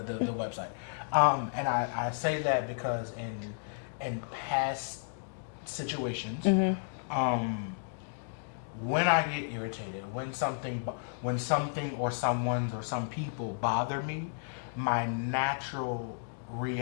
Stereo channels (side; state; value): right; silent; digital silence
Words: the website. And I say that because in past situations, when I get irritated, when something or someone's or some people bother me, my natural